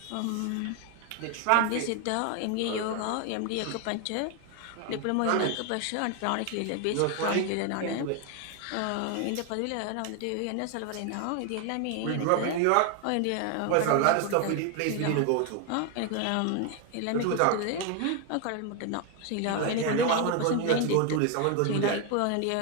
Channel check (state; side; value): different; both; correlation 0.01